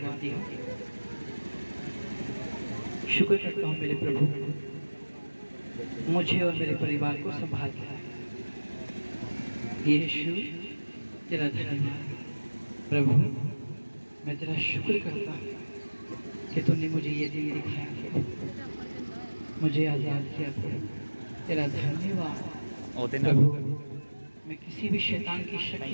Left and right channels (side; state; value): both; inverted; correlation -1.00